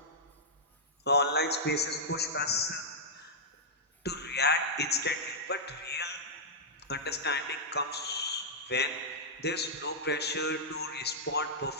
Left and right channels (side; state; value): both; normal; correlation -0.10